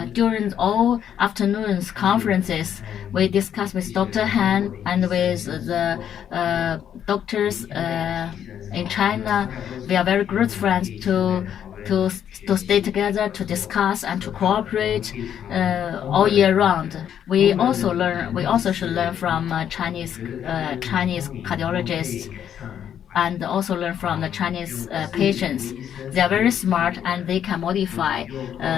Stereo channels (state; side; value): quieter; right; 9.4 dB